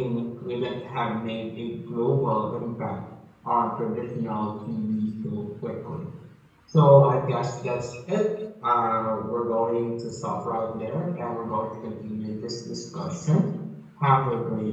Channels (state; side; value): identical; both; correlation 1.00